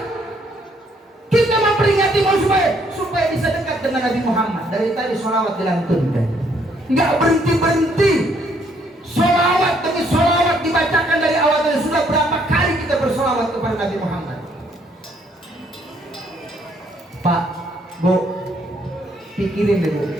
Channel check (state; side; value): normal; both; correlation 0.68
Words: Kita memperingati supaya supaya bisa dekat dengan Nabi Muhammad. Dari tadi sholawat dilantunkan, nggak berhenti-berhenti. Sholawat demi sholawat dibacakan dari awal. Dan sudah berapa kali kita bersolawat kepada Nabi Muhammad. Pak, Bu, pikirin deh Bu,